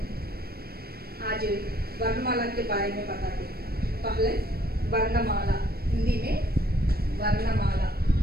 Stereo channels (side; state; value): left; late; 0.45 ms